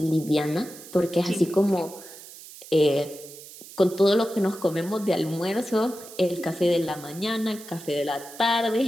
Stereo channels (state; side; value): noise; right; hiss, 17 dB below the sound